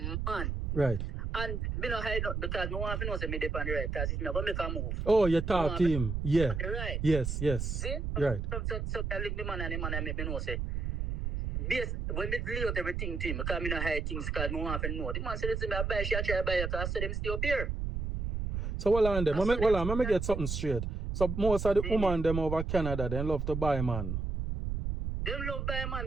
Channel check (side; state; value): right; noise; rumble, 2 dB below the sound